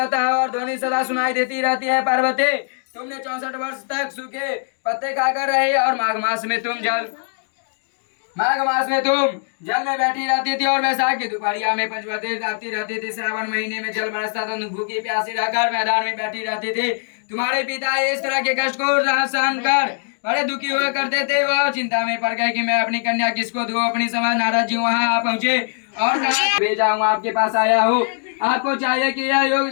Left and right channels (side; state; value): right; silent; digital silence